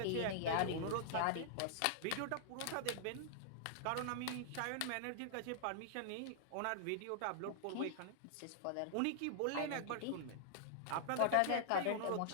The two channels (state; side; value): different; both; correlation -0.01